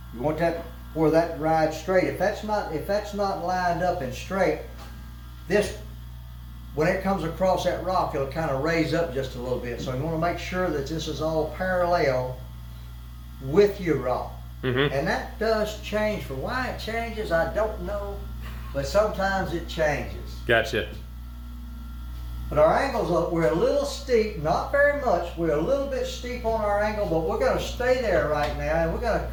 You want that where that rides straight. If that's not lined up and straight, this, when it comes across that rock, it'll kind of raise up just a little bit. So you want to make sure that this is all parallel with your rock. Mm-hmm. And that does change. For why it changes, I don't know, but sometimes it changes. Gotcha. But our angles, we're a little steep, not very much. We're a little bit steep on our angle, but we're going to stay there right now, and we're going to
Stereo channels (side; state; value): both; identical; correlation 1.00